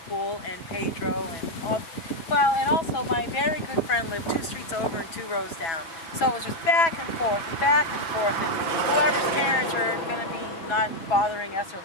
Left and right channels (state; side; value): late; right; 6.1 ms